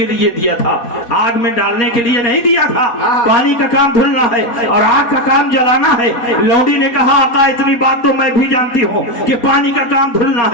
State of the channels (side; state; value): right; late; 4.2 ms